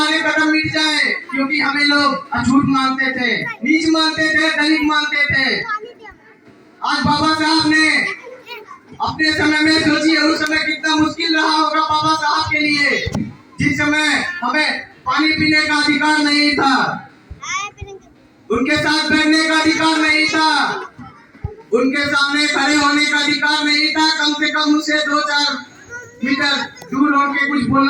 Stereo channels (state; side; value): identical; both; correlation 1.00